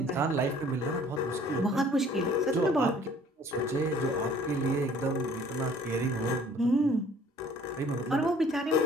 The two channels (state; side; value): normal; both; correlation 0.54